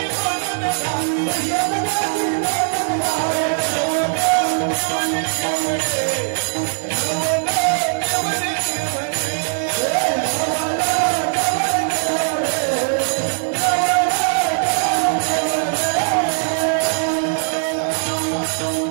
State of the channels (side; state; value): left; silent; digital silence